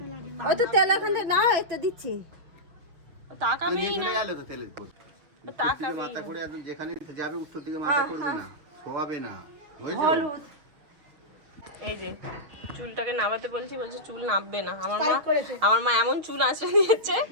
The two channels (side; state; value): left; late; 6.4 ms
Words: ওই তো তেল এখানে না, এটা দিচ্ছি। তাকাবেই না, তাকাবেই মাথা করে একদম যেখানে যাবে উত্তর দিকে মাথা করবে না, শোয়াবে না। হলুদ এই যে চুলটাকে নামাতে বলছি, বলছে চুল নামবে না। আমার মা এমন চুল আঁচড়ে দিয়েছে,